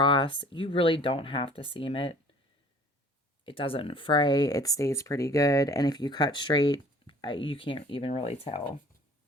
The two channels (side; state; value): both; normal; correlation 0.50